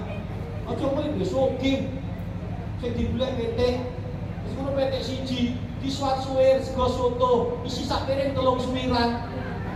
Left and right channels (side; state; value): both; identical; correlation 1.00